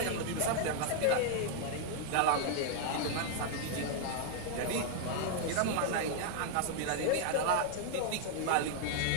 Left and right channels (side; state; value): both; different; correlation 0.00